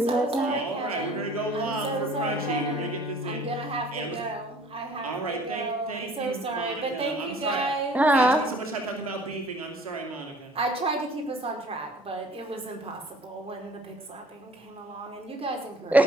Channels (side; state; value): both; normal; correlation 0.51